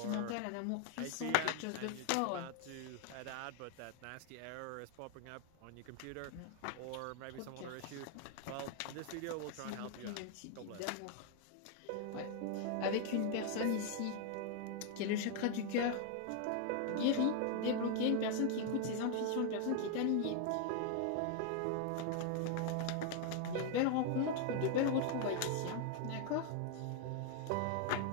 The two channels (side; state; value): both; different; correlation 0.00